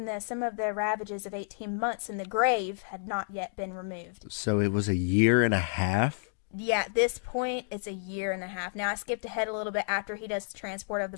though some of the ravages of 18 months in the grave had not yet been removed." So it was a year and a half? Yeah, at this point, it's a year and a half. Now, I skipped ahead a little bit after he does the transport of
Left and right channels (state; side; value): silent; right; digital silence